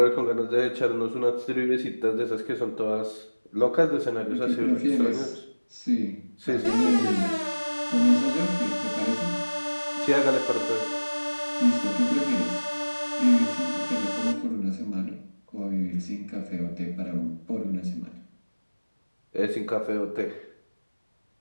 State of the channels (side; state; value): both; inverted; correlation -1.00